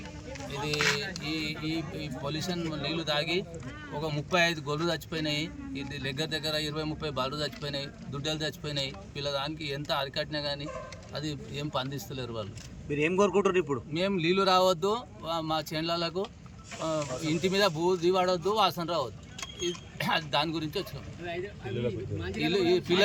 ఇది ఈ పొల్యూషన్ నీళ్లు తాగి ఒక 35 గొర్రెలు చచ్చిపోయినాయి. ఇది దగ్గర 20-30 బాలు చచ్చిపోయినాయి, దుడ్డలు చచ్చిపోయినాయి. దానికి ఎంత అరికట్టినా కానీ అది ఏం పండిస్తలేరు వాళ్ళు. మీరు ఏం కోరుకుంటారు ఇప్పుడు? మేము నీళ్లు రావద్దు, మా చేనులకు ఇంటి మీద బూది పడవద్దు, వాసన రావద్దు. దాని గురించి వచ్చినాం.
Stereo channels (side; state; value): both; identical; correlation 1.00